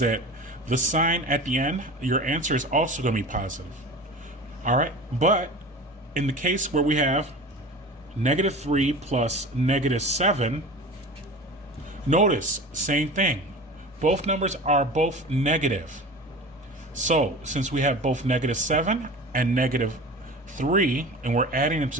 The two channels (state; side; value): normal; both; correlation 0.35